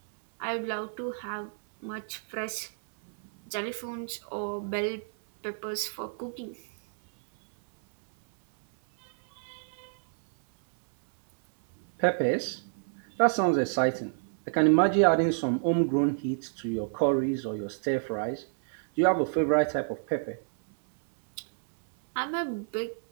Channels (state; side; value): silent; left; 58 dB below the other